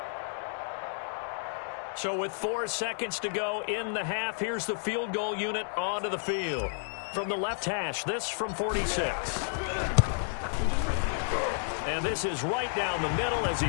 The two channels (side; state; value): right; silent; digital silence